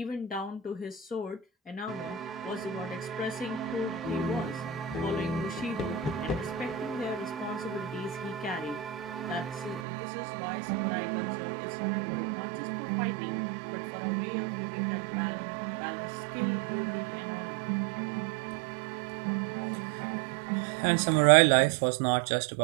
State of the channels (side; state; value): left; drops out; at 9.9 s